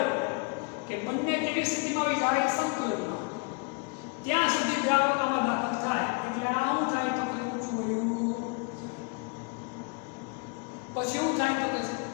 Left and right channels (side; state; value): right; quieter; 34.4 dB